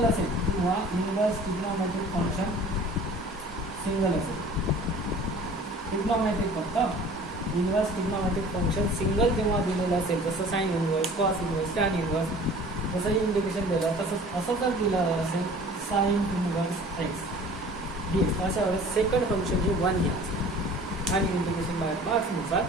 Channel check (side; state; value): both; normal; correlation 0.46